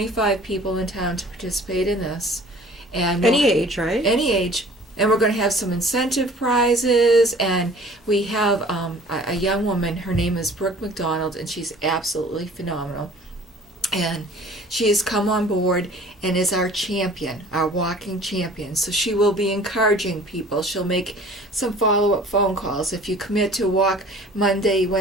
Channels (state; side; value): normal; both; correlation 0.49